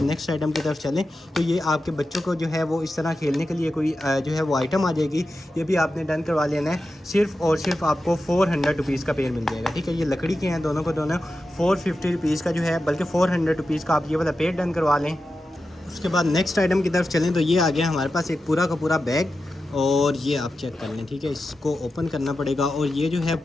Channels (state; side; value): normal; both; correlation 0.91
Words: नेक्स्ट आइटम की तरफ चलें तो ये आपके बच्चों को जो है वो इस तरह खेलने के लिए कोई जो है वो आइटम आ जाएगी, ये भी आपने डन करवा लेना है। सिर्फ और सिर्फ आपको 400 रुपीज़ का पेड़ मिल जाएगा, ठीक है, ये लकड़ी के हैं दोनों को दोनों, 450 रुपीज़ का जो है, बल्कि 400 रुपीज़ का आप ये वाला पेड़ डन करवा लें। उसके बाद नेक्स्ट आइटम की तरफ चलें तो ये आ गया हमारे पास एक पूरा का पूरा बैग, और ये आप चेक कर लें, ठीक है, इसको ओपन करना पड़ेगा। और ये जो है